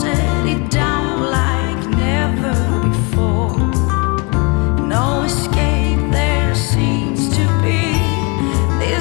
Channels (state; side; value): quieter; right; 31.1 dB